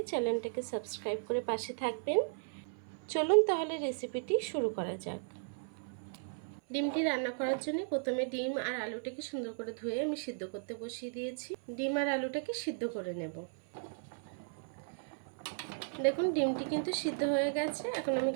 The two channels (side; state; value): left; silent; 54 dB below the other